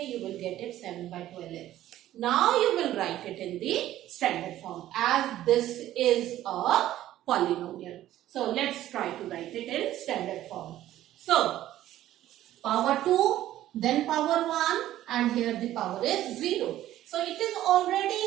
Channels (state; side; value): quieter; left; 13.5 dB